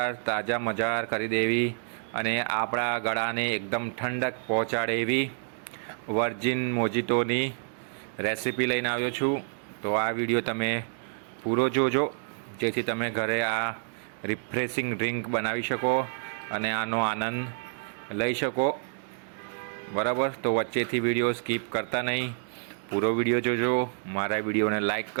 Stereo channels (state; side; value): silent; left; digital silence